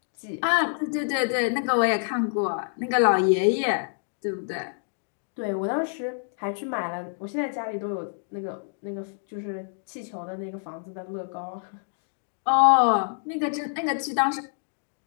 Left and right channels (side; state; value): right; silent; digital silence